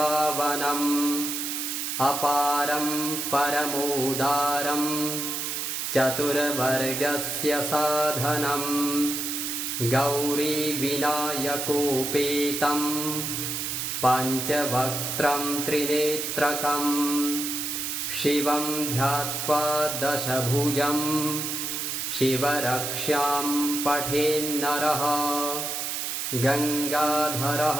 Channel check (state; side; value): noise; right; hiss, 3 dB below the sound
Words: अपारं परमोदारं चतुर्वर्गस्य साधनं गौरीविनायकोपेतं पञ्चवक्त्रं त्रिनेत्रकं शिवं ध्यात्वा दशभुजं शिवरक्षां पठेन्नरः